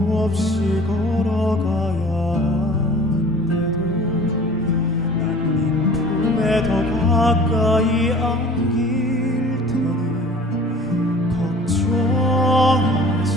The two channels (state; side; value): normal; both; correlation 0.46